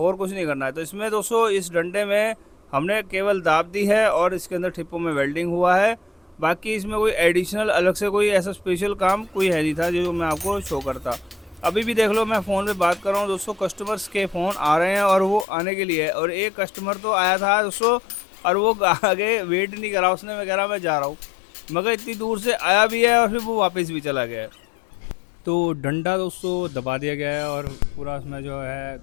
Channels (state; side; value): drops out; right; at 15.5 s